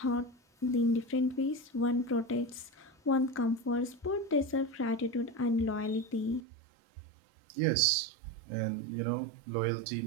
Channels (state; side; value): drops out; left; at 6.4 s